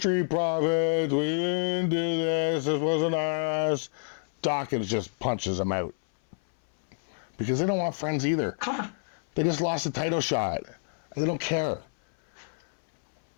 Profits, we didn't do this wasn't us. Dawkins just punches him out. Because they don't want friends either. They just lost a title shot. They don't care.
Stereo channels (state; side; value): silent; right; 59 dB below the other